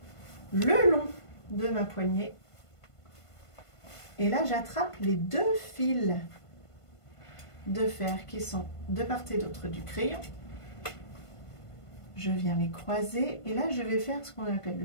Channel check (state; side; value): late; right; 1.5 ms